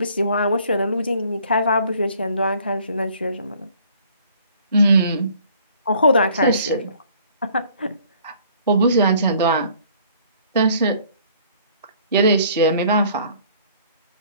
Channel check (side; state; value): both; inverted; correlation -0.58